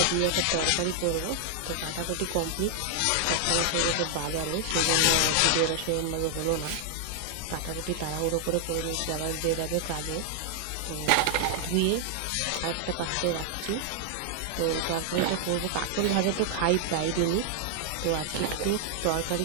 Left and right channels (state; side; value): different; both; correlation 0.00